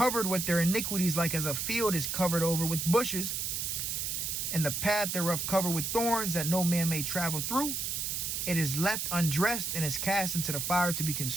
with their iniquities, like as a field is covered over with bushes, and the path thereof covered with thorns, that no man may travel through. It is left undressed and is cast into the fire to be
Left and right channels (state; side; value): noise; right; hiss, 2 dB below the sound